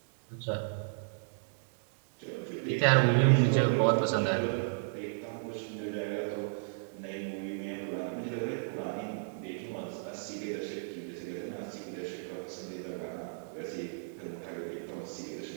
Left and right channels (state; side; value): silent; left; digital silence